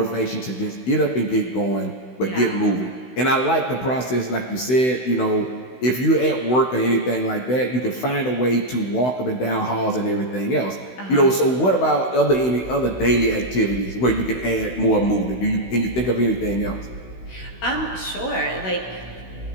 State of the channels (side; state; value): right; late; 16 ms